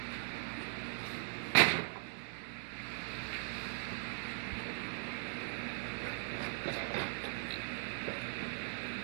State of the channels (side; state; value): left; silent; 51 dB below the other